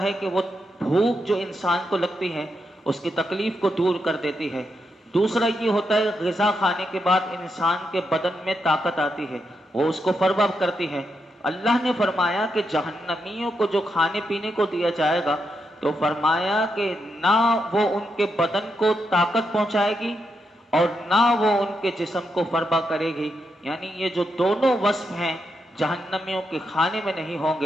ہے کہ وہ بھوک جو انسان کو لگتی ہے اس کی تکلیف کو دور کر دیتی ہے۔ دوسرا یہ ہوتا ہے غذا کھانے کے بعد انسان کے بدن میں طاقت آتی ہے، وہ اس کو فروغ کرتی ہے۔ اللہ نے فرمایا کہ جہنمیوں کو جو کھانے پینے کو دیا جائے گا تو فرمایا کہ نہ وہ ان کے بدن کو طاقت پہنچائے گی اور نہ وہ ان کے جسم کو فربا کرے گی، یعنی یہ جو دونوں وصف ہیں جہنمیوں کے کھانے میں نہیں ہوں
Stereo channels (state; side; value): normal; both; correlation 0.83